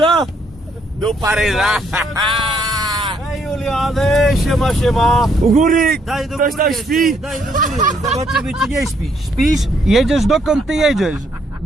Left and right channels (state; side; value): normal; both; correlation 0.71